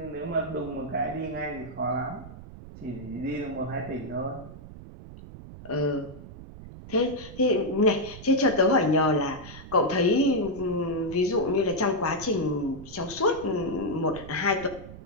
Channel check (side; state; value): right; noise; rumble, 15 dB below the sound